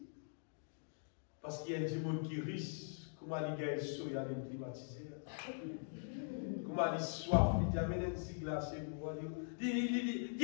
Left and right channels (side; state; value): right; silent; digital silence